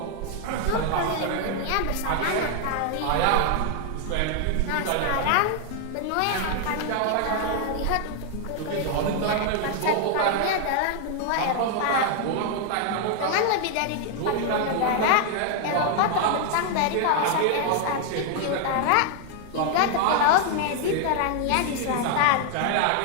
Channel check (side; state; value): both; different; correlation 0.00